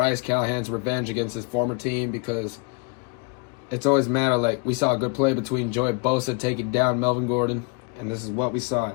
Callahan's revenge against his former team, because it's always matter. Like, we saw a good play between Joey Bosa taking down Melvin Gordon, and this is what we saw.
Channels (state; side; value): quieter; right; 33.4 dB